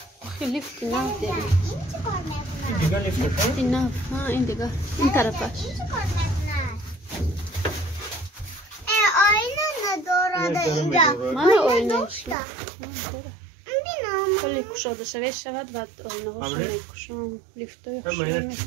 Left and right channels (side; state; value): left; drops out; at 12.4 s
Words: ليفت ناف داري دیگه لیفت ناف ها این دیگه این طرفش آینه نداره اینجا من آینهش کلی کشاده شود و آینه هاشو میکشم لیفت های خوشی